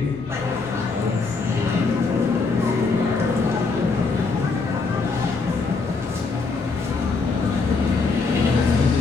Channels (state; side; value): quieter; right; 4.2 dB